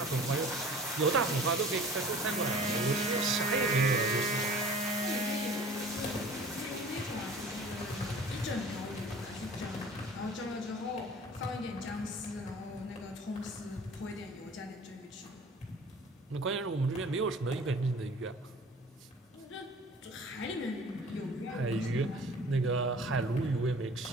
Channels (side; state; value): both; normal; correlation 0.45